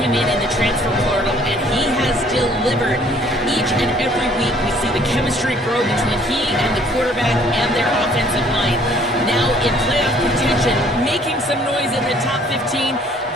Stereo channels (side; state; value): both; normal; correlation 0.59